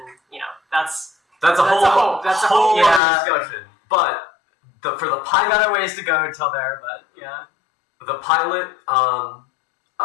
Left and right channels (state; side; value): drops out; right; at 3.0 s